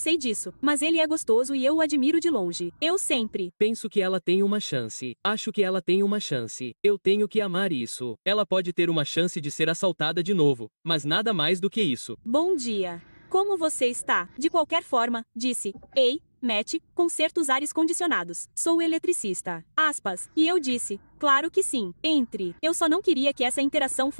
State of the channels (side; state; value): both; inverted; correlation -1.00